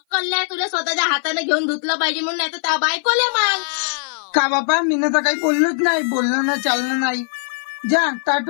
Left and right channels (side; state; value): right; silent; 56 dB below the other